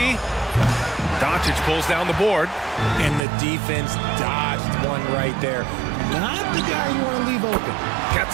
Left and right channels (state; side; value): drops out; left; at 3.2 s